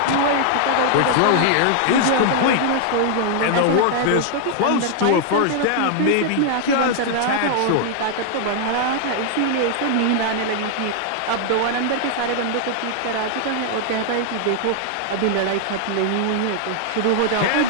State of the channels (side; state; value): both; different; correlation 0.00